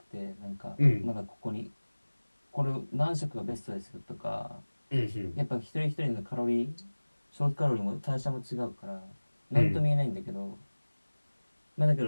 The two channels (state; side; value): inverted; both; correlation -1.00